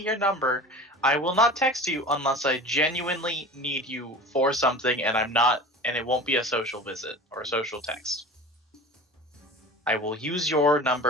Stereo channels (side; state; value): both; normal; correlation 0.37